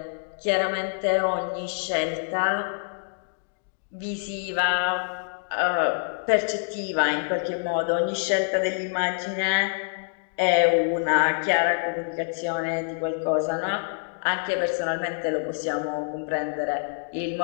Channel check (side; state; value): right; silent; digital silence